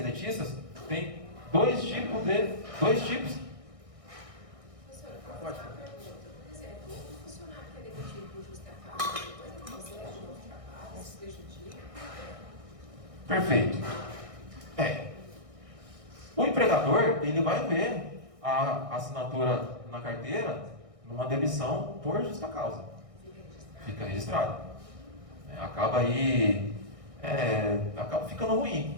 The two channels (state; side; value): late; left; 1.6 ms